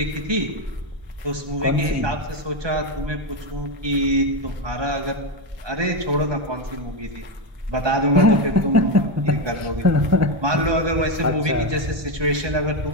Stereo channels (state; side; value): late; left; 1.2 ms